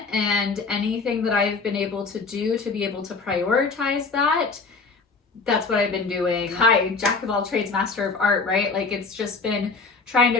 And anything that I've been able to do to be able to prioritize that, that's what I've been doing. Hi, jack of all trades, master of art, right? Like, it's just been trying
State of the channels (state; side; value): quieter; right; 4.3 dB